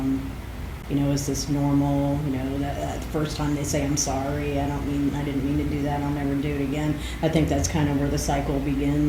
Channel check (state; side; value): identical; both; correlation 1.00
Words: is this normal? That first time they say, I'm sorry, I didn't mean to do that, I'll never do it again. I think that's kind of where the cycle